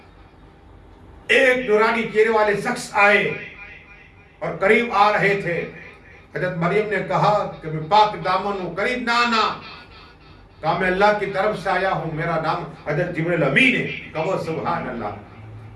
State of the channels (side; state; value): both; identical; correlation 1.00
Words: ایک نورانی چہرے والے شخص آئے اور قریب آ رہے تھے۔ حضرت مریم نے کہا کہ میں پاک دامن ہوں، قریب نہ آنا۔ کہا میں اللہ کی طرف سے آیا ہوں، میرا نام حضرت جبریل امین ہے، کہو سبحان اللہ،